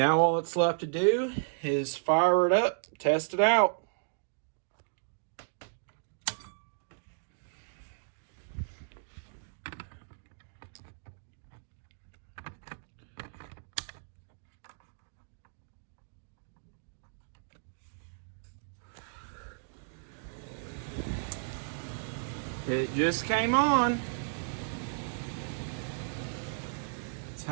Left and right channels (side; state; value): left; silent; digital silence